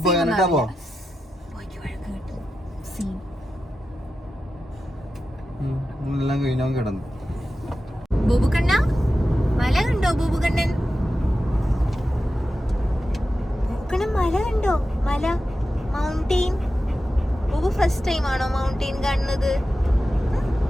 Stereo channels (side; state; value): both; normal; correlation 0.91